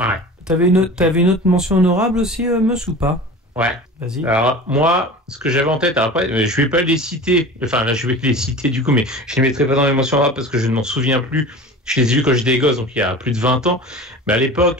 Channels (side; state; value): both; normal; correlation 0.36